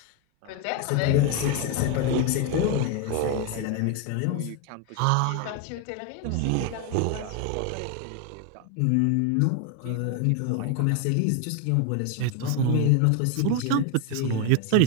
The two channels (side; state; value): both; different; correlation 0.01